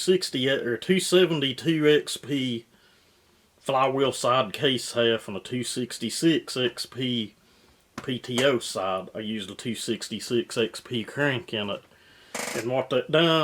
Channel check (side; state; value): both; identical; correlation 1.00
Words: or 272 XP flywheel side case half and a 266 XP PTO side. I used a 266 XP crank in it. And what that